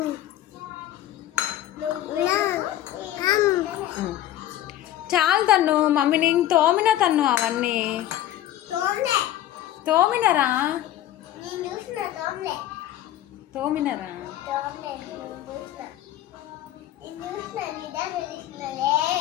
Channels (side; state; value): right; quieter; 13.1 dB